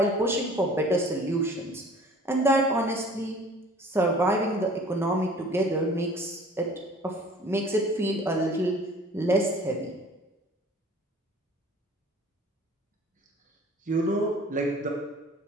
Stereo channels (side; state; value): both; normal; correlation 0.49